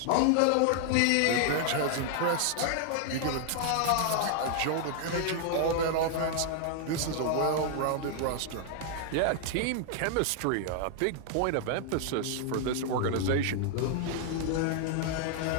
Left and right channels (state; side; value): different; both; correlation 0.00